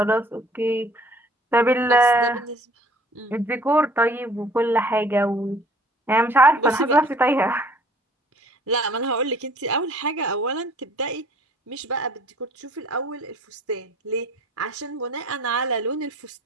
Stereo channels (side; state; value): both; normal; correlation 0.54